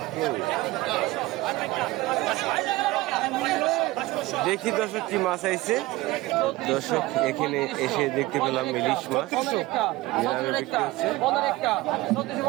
দেখি দর্শক কি মাছ আইছে। দর্শক এখানে এসে দেখতে পেলাম ইলিশ মাছ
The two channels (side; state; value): left; quieter; 19.2 dB